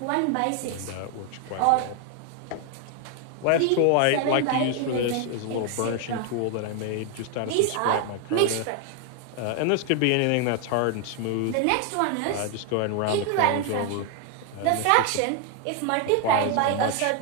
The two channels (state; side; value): different; both; correlation 0.01